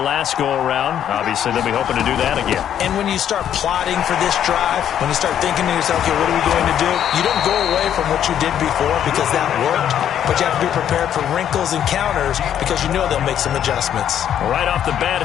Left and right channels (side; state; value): right; quieter; 9.9 dB